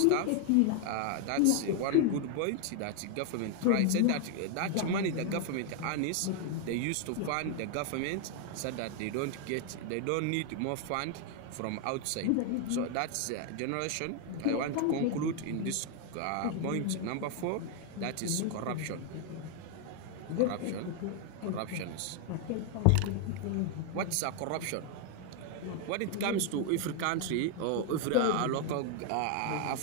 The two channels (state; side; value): different; both; correlation 0.00